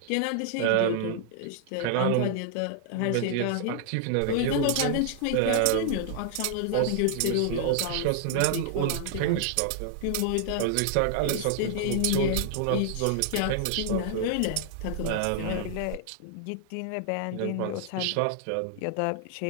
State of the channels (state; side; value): different; both; correlation -0.01